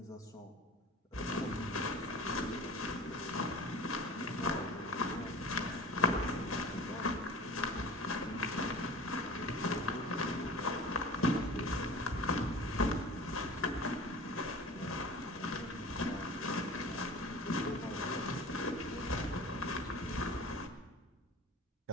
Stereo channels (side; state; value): both; normal; correlation 0.39